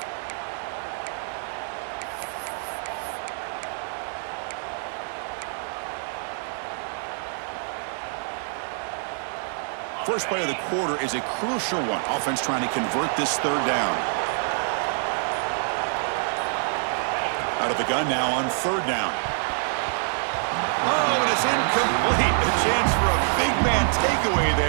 First play of the quarter is a crucial one. Offense trying to convert this third down. Out of the gun now on third down. Oh, and it's incomplete. A chance for a big man takeaway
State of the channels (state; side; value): silent; left; 61 dB below the other